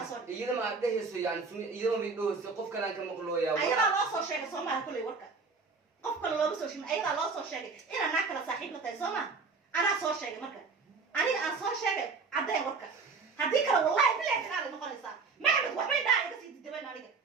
إذا ما ده يسوي يعني إذا ما بدو قف كلام كم مقلويا أيضا لا صور شيء صوما كله وركان قف كله لا بسوي شيء أيضا لا صور شيء إنا ناكل صاحب متى صوما أنا صور شيء مركان أنا صور شيء عدا وركان هذيك والله بلا كلام نقول صار ما عمد وحبي ده بس يتدبن عليك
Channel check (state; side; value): quieter; left; 4.6 dB